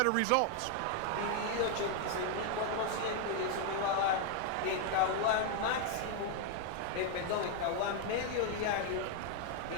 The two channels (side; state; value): both; different; correlation 0.00